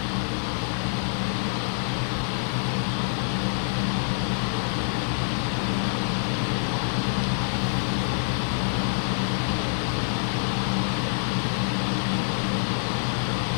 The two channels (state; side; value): silent; right; 61 dB below the other